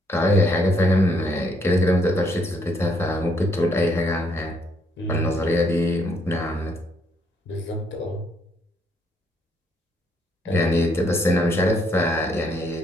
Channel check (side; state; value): both; normal; correlation 0.71